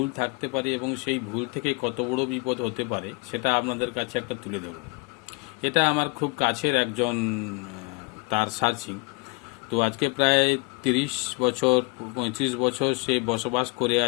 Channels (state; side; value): quieter; right; 29.9 dB